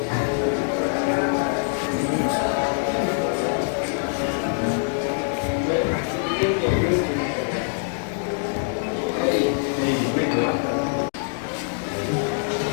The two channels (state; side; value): silent; right; digital silence